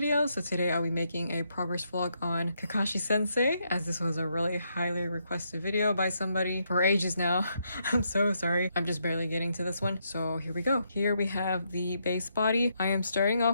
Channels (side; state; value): both; inverted; correlation -0.78